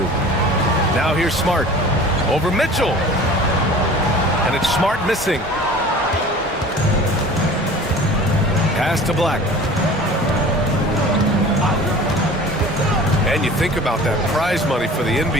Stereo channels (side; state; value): both; normal; correlation 0.42